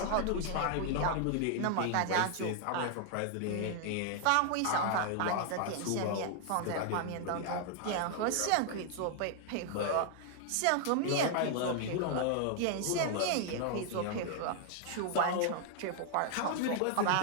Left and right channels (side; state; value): both; different; correlation 0.00